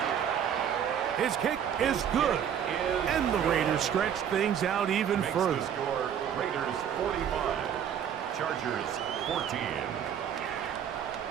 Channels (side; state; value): left; quieter; 8.8 dB